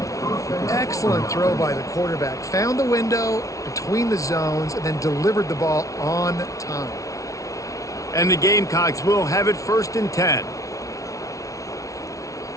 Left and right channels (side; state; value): right; late; 0.16 ms